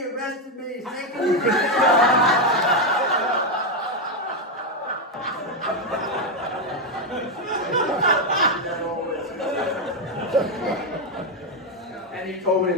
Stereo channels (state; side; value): normal; both; correlation 0.05